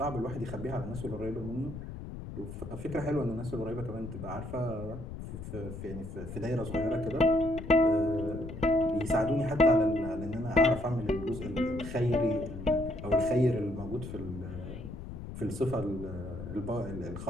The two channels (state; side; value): noise; left; rumble, 10 dB below the sound